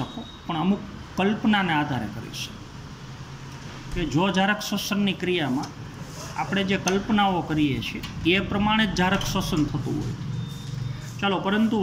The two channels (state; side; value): identical; both; correlation 1.00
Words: પણ અમુક કલ્પનાને આધારે કરી શકો. કે જો જારક શ્વસનની ક્રિયામાં આપણે જે કલ્પનાઓ કરીએ છીએ એ પ્રમાણે જ જારક શ્વસન થતું હોય. ચાલો, પરંતુ